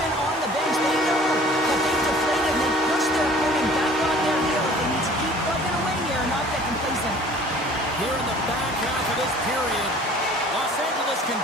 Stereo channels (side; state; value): both; normal; correlation 0.50